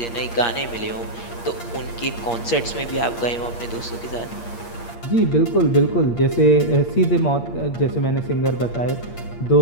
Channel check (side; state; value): right; late; 8.6 ms